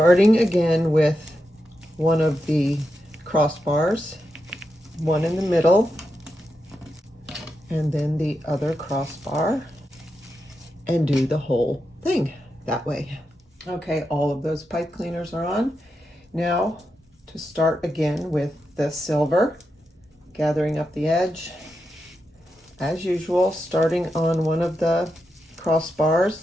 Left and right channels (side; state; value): both; normal; correlation 0.87